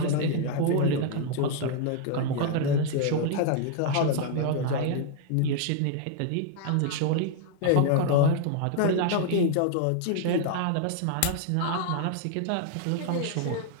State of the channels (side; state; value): both; different; correlation 0.00